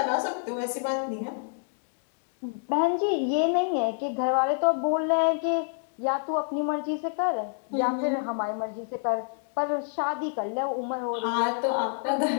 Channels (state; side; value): silent; right; 60 dB below the other